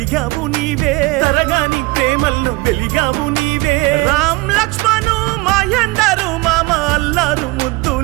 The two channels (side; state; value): left; quieter; 23.0 dB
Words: నీవే, తరగాని ప్రేమల్లో వెలిగావు నీవే. రామ్ లక్ష్మణు మహేందరు మామ అల్లారు